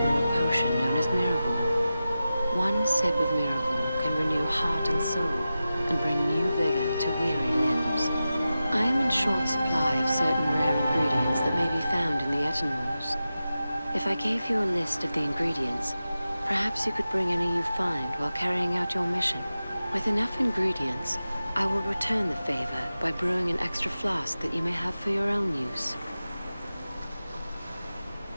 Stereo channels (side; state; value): both; inverted; correlation -0.93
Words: brew a potion known as Miraval. One sip of Miraval can renew heart and soul, and bring new vigor to weary limbs. I am in short supply of certain rare ingredients that may be found in the Etenmoors. If I gave you a list of the ingredients, perhaps you could bring any you find while carrying out your mission. With enough ingredients, I will return the favor by brewing an extra flask that you may have for your own use.